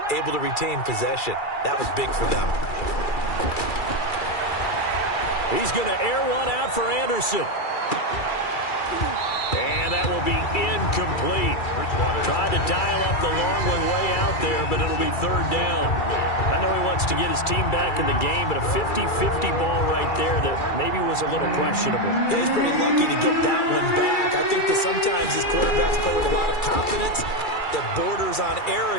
Able to retain possession. That was big for them. He's going to air one out for Anderson. And that will be incomplete. Tried to dial up the long one way out there, but it'll be 3rd down. I know he wants to get his team back in the game, but a 50-50 ball right there that maybe was a little questionable. Yeah, he's pretty lucky to get that one back. I think that sometimes these quarterbacks play with a lot of confidence that borders on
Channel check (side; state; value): right; late; 2.3 ms